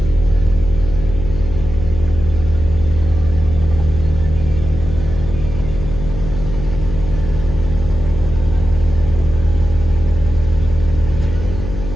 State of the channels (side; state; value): left; noise; hum, 7 dB below the sound